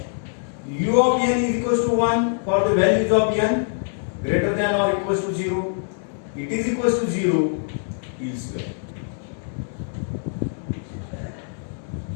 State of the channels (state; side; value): silent; right; digital silence